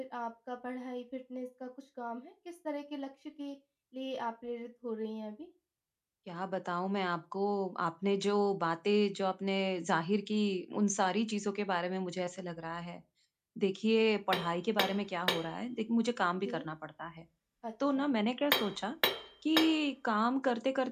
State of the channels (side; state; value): both; identical; correlation 1.00